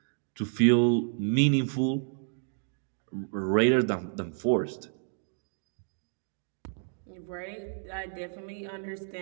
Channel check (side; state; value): left; silent; digital silence